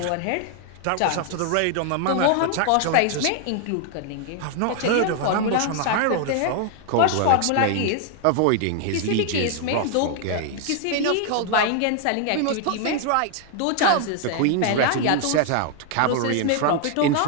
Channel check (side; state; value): both; different; correlation 0.00